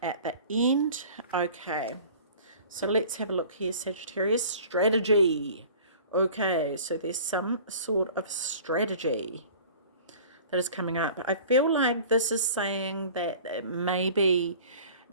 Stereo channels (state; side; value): inverted; both; correlation -0.45